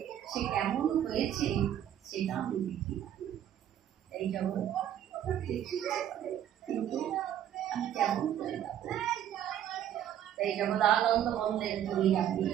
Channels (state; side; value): quieter; left; 10.6 dB